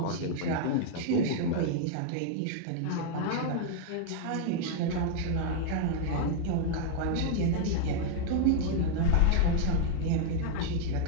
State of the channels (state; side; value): different; both; correlation -0.01